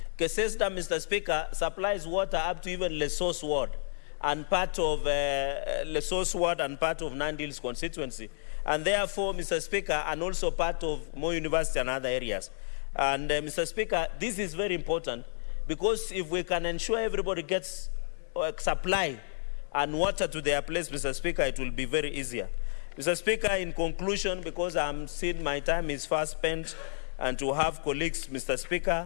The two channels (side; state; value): right; silent; 57 dB below the other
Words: Keses Dam, Mr. Speaker, supplies water up to even Lesotho Ward and part of Lesotho Ward and part of Nandi Hills constituency. And therefore, Mr. Speaker, and also part of Moi University and other areas. And Mr. Speaker, this is very important because if we can ensure everybody gets supply and water to their place, Mr. Speaker, it will be very easier. Mr. Speaker, in conclusion, because I'm seeing my time is fast spent, and to have colleagues, Mr.